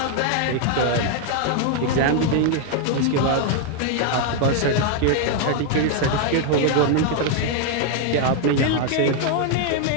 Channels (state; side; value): different; both; correlation 0.00